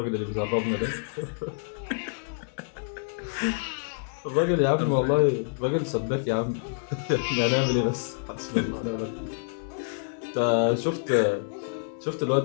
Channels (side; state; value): right; silent; digital silence